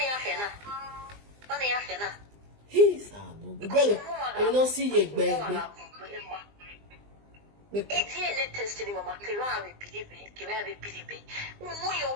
afena. He's a no. You don't see your baby. It's DNA tested. Mama, Kira believe. Mo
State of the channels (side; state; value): left; late; 20 ms